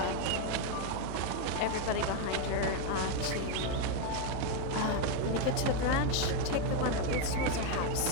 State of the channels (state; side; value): different; both; correlation 0.01